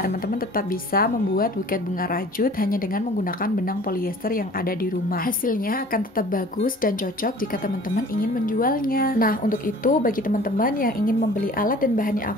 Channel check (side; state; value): both; normal; correlation 0.47